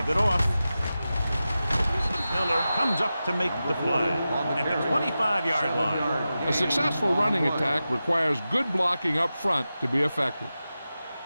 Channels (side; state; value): both; inverted; correlation -0.93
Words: it off. Miller comes up to make the play at the 25-yard line. A successful running attack requires good blocking up front to be effective.